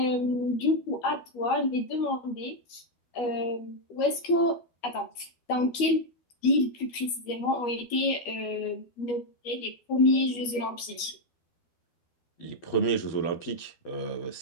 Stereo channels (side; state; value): right; late; 12 ms